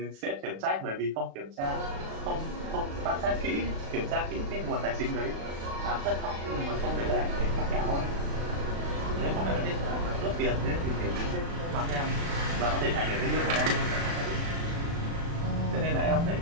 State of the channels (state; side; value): late; left; 36 ms